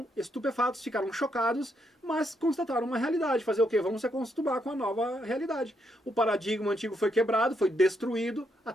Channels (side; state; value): both; normal; correlation 0.77